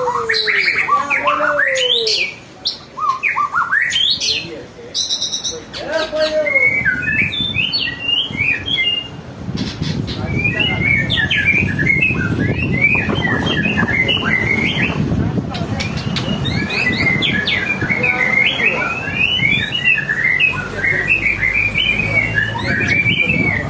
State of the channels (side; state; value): both; identical; correlation 1.00